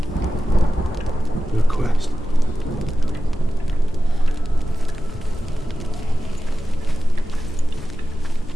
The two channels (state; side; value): normal; both; correlation 0.93